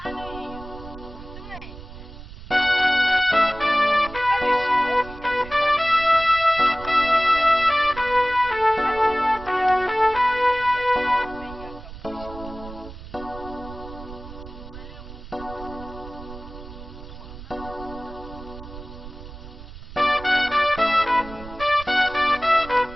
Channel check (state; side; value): noise; right; rumble, 14 dB below the sound